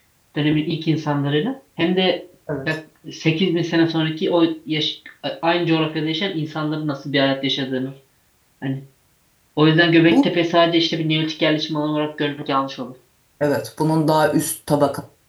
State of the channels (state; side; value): identical; both; correlation 1.00